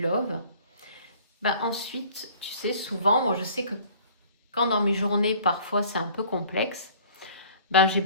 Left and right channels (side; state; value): both; inverted; correlation -0.51